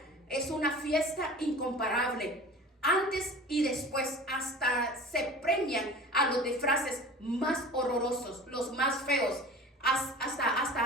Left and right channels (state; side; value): normal; both; correlation 0.39